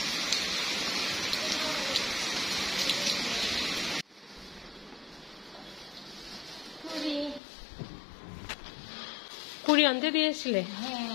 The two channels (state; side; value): drops out; right; at 7.4 s